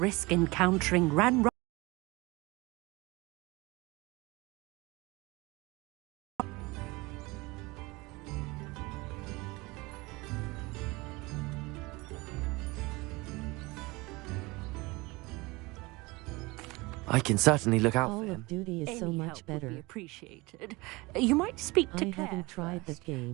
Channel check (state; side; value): quieter; left; 23.5 dB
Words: encountering Ran. I can certainly look out for Call him. of Duty is so Any much help would better. be appreciated. You might speak to I Claire haven't tried first. that